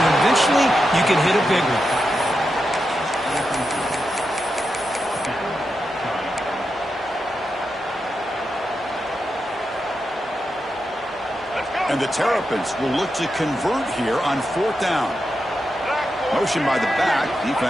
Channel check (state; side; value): normal; both; correlation 0.87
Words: eventually you can hit a big one. And the Terrapins will look to convert here on 4th down. Motion by the back.